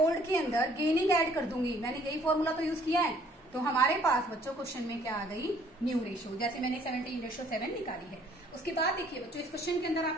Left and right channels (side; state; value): both; normal; correlation 0.60